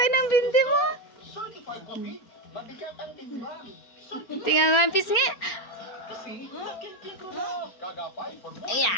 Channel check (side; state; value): right; late; 4.4 ms